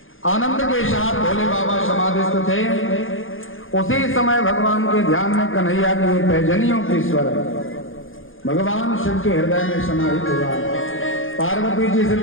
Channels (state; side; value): late; right; 0.59 ms